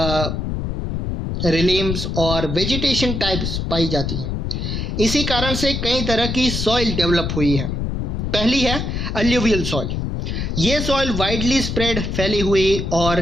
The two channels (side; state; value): left; noise; rumble, 2 dB below the sound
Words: रिलीम्स और वेजिटेशन टाइप्स पाई जाती हैं। इसी कारण से कई तरह की सॉइल डेवलप हुई है। पहली है अल्यूवियल सॉइल। ये सॉइल वाइडली स्प्रेड फैली हुई